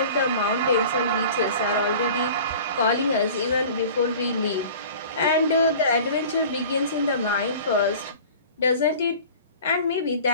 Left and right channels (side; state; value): both; inverted; correlation -0.42